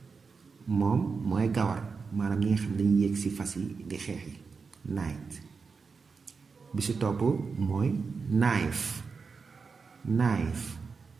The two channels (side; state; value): left; quieter; 5.0 dB